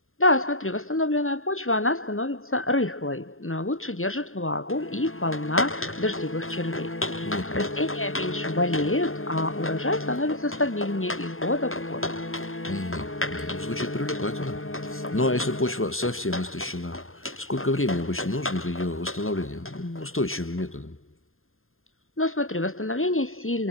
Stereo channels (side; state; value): right; late; 0.61 ms